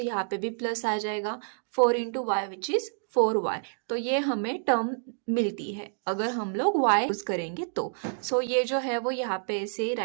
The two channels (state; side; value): silent; left; digital silence